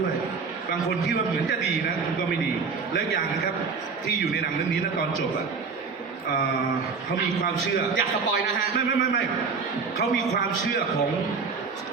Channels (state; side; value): quieter; left; 5.1 dB